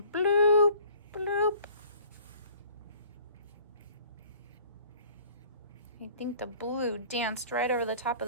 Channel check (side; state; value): both; inverted; correlation -0.52